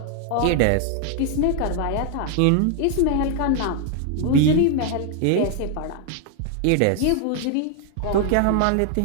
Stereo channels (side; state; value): both; different; correlation 0.00